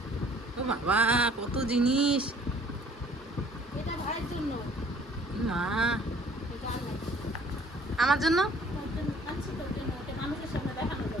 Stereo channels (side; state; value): both; normal; correlation 0.55